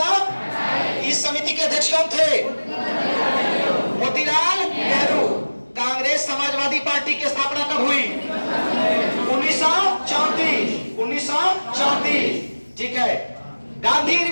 इस समिति के अध्यक्ष कौन थे? मोतीलाल नेहरू। कांग्रेस समाजवादी पार्टी की स्थापना कब हुई? 1934। 1934, ठीक है। गांधी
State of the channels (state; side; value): inverted; both; correlation -1.00